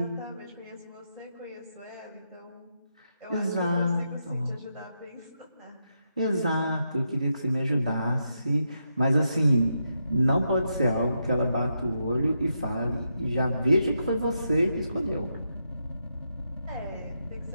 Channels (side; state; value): both; inverted; correlation -0.83